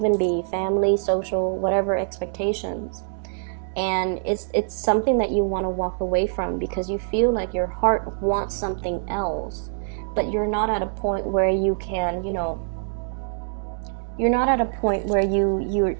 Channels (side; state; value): left; silent; digital silence